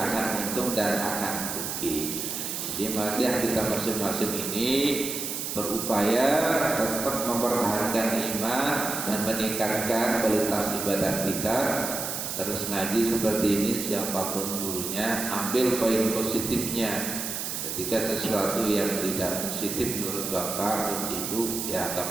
untung dan akan rugi. Jadi mari kita masing-masing ini berupaya tetap mempertahankan iman dan meningkatkan kualitas ibadah kita. Terus ngaji seperti ini, siapapun gurunya, ambil poin positifnya. Ketika sesuatu yang tidak positif menurut bapak, ibu, ya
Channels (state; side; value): noise; right; hiss, 4 dB below the sound